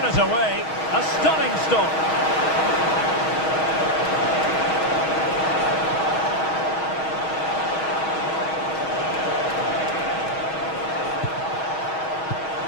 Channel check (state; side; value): late; right; 6.3 ms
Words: it away. A stunning stop.